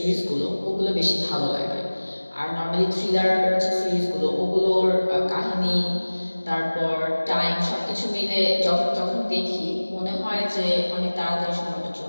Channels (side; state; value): both; inverted; correlation -1.00